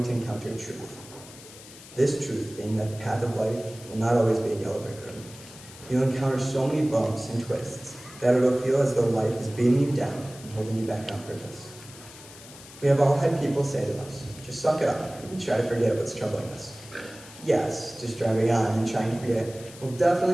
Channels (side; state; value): left; noise; hiss, 18 dB below the sound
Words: to encounter truth. This truth being that the path of life will not always be a yellow brick road. You'll encounter so many bumps and twists that it'll feel as though life is beating you down and holding you back on purpose. We have all had people say to us, just suck it up and try to forget what's troubling us. Yes, just driving on and trying to forget will